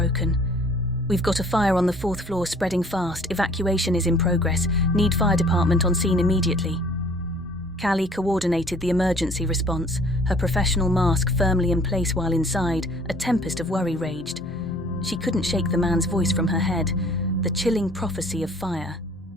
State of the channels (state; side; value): normal; both; correlation 0.54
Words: We've got a fire on the 4th floor spreading fast. Evacuation is in progress. Need fire department on scene immediately. Callie coordinated the emergency response, her professional mask firmly in place while inside, a tempest of worry raged. She couldn't shake the man's voice from her head, the chilling prophecy of fire.